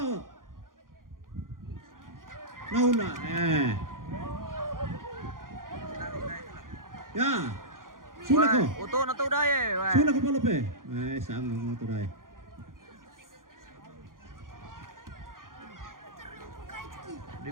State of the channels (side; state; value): left; late; 0.90 ms